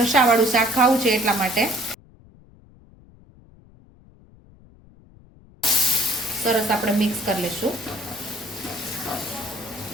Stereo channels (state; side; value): noise; left; rumble, 26 dB below the sound